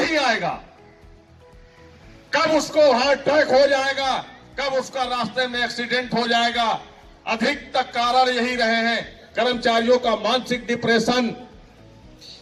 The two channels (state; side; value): identical; both; correlation 1.00